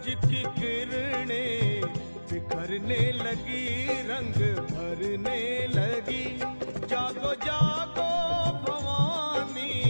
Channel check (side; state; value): both; inverted; correlation -1.00